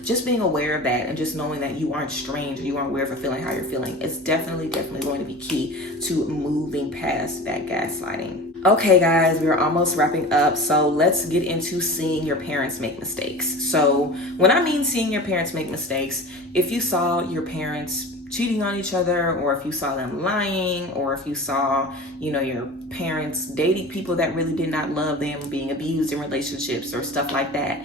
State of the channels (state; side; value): normal; both; correlation 0.35